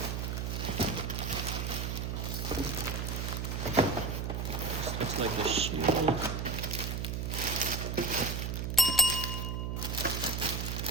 Looks like the shield.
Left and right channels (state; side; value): noise; right; hum, 2 dB below the sound